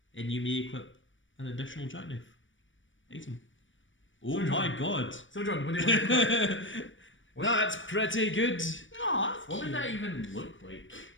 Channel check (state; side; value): late; right; 0.56 ms